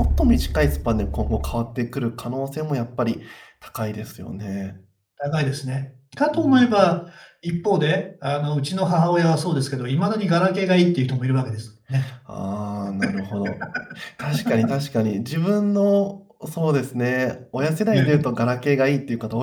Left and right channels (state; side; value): identical; both; correlation 1.00